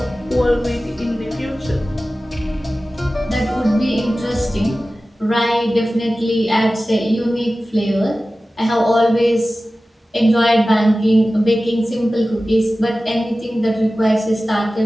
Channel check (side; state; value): both; normal; correlation 0.96